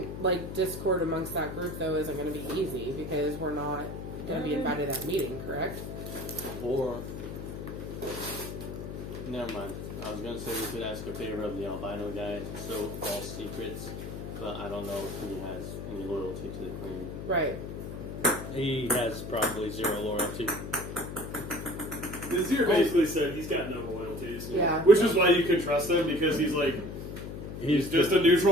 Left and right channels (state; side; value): noise; left; hum, 8 dB below the sound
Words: like discord amongst that group though isn't going to be easy because we're not going to be invited to that meeting, correct? Or never mind. I was gonna say we could ask a favor of the albino guy to sow false secrets, but I don't know if he has any loyalty to the queen. Right. He has probably zero loyalty. Nazir basically said he's got no loyalties. Yeah. Which is why you can trust him, because he's like, he's just a